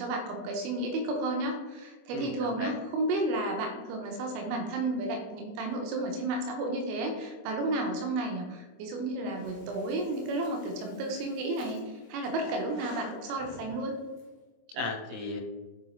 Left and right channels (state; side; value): late; left; 25 ms